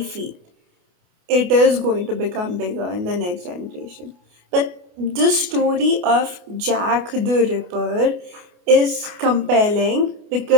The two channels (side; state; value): left; late; 28 ms